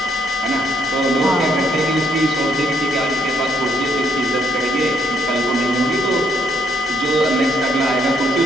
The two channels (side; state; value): both; normal; correlation 0.71